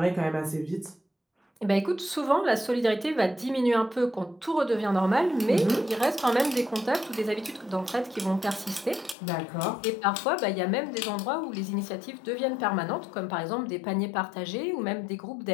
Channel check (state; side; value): drops out; right; at 9.2 s